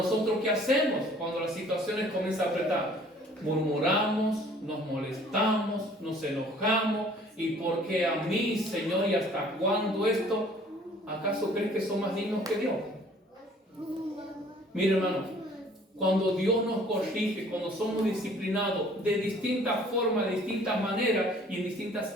¿qué hacemos cuando las situaciones comienzan a apretar? Murmuramos, nos molestamos, nos enojamos. ¿Y por qué a mí, Señor? ¿Y hasta cuándo esto? ¿Acaso crees que son más dignos que Dios? Mire, hermano, cuando Dios nos corrige, cuando somos disciplinados de distintas formas, de distintas maneras y en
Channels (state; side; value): normal; both; correlation 0.54